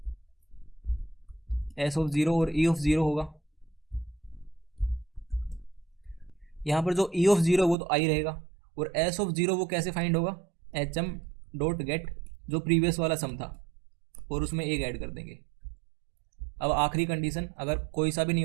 और ई ऑफ ज़ीरो होगा। यहाँ पर जो ई ऑफ ज़ीरो वो तो आई रहेगा, और एस ऑफ ज़ीरो वो कैसे फाइंड होगा, एच एम डॉट गेट जो प्रीवियस वाला सम था और उसमें एक ऐड कर देंगे। अब आखिरी कंडीशन, अगर कोई सा भी नहीं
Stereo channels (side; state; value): left; drops out; at 7.8 s